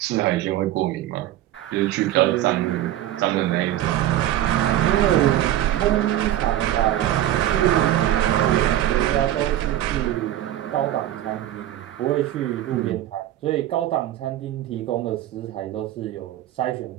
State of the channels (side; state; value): left; quieter; 13.1 dB